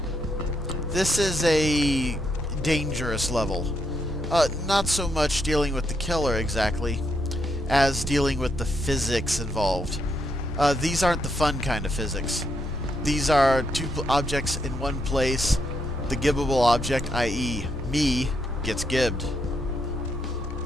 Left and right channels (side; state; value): both; normal; correlation 0.79